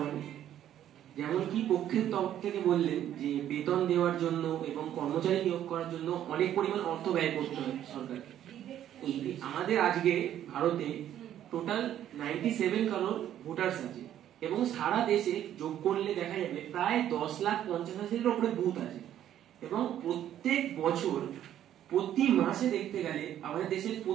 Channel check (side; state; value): left; quieter; 11.2 dB